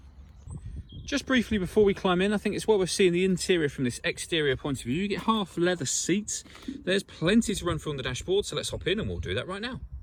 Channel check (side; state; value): both; identical; correlation 1.00